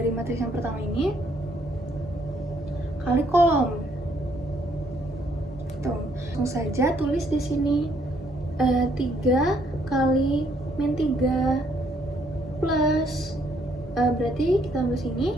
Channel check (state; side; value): normal; both; correlation 0.68